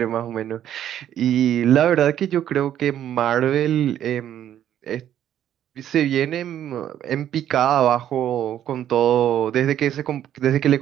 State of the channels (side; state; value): left; quieter; 10.9 dB